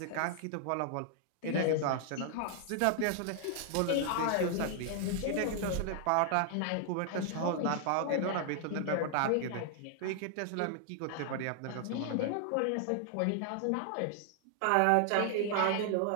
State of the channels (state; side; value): different; both; correlation 0.00